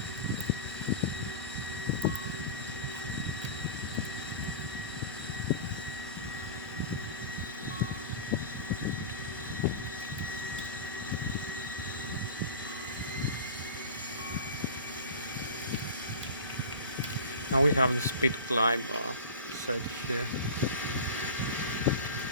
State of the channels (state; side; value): inverted; both; correlation -0.33